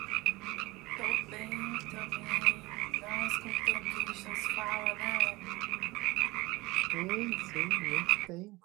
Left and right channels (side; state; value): left; quieter; 21.8 dB